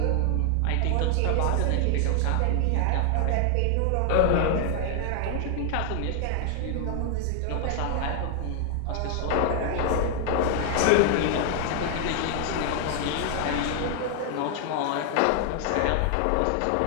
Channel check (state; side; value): different; both; correlation 0.00